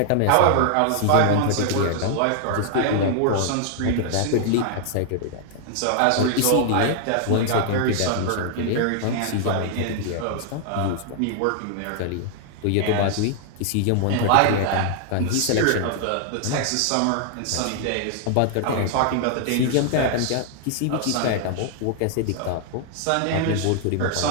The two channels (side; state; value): both; different; correlation 0.00